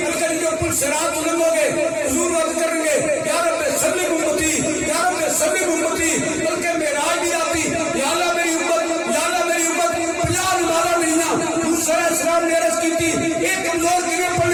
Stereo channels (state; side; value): identical; both; correlation 1.00